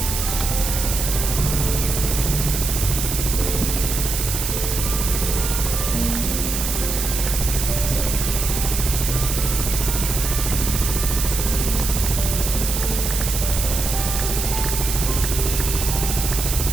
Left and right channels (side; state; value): right; noise; hiss, 3 dB below the sound